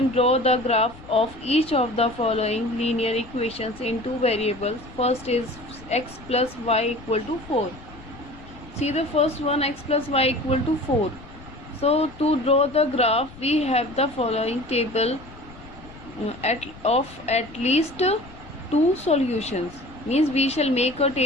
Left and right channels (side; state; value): left; noise; rumble, 19 dB below the sound